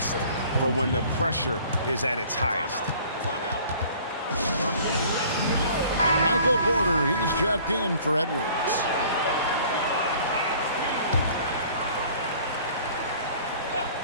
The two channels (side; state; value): both; inverted; correlation -0.51